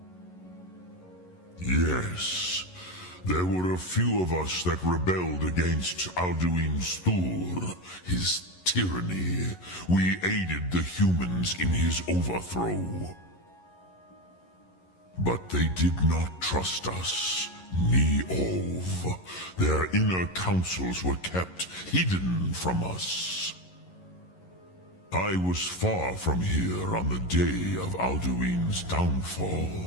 Yes, there were a few of us that rebelled against Alduin's Thur, his tyranny. We aided the humans in his overthrow. But they did not trust us, ni Ov. Their inner counsels were kept hidden from us. I was far from here on the day of Alduin's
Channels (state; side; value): late; right; 11 ms